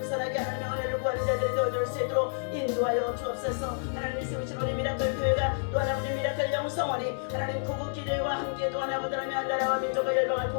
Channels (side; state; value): right; silent; digital silence